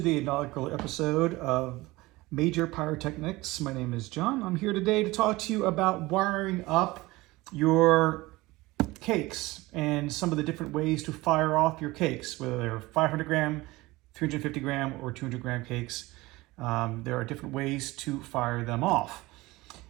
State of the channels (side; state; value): left; quieter; 20.5 dB